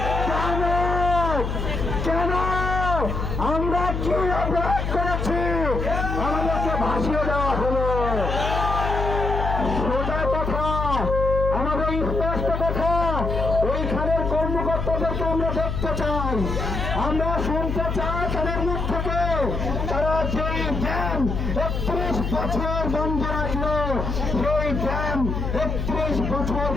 কেন কেন আমরা কি অপরাধ করেছি আমাদেরকে ভাসিয়ে দেওয়া হলো। সোজা কথা, আমাদের স্পষ্ট কথা, ওইখানের কর্মকর্তাদেরকে আমরা দেখতে চাই, আমরা শুনতে চাই তাদের মুখ থেকে তারা যেই ড্যাম 31 বছর বন্ধ রাখলো, সেই ড্যাম 31 বছর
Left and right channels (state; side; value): noise; left; hum, 2 dB below the sound